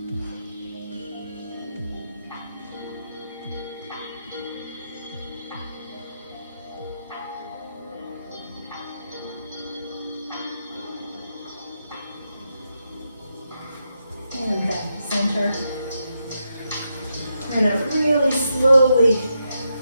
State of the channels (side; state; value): both; inverted; correlation -0.84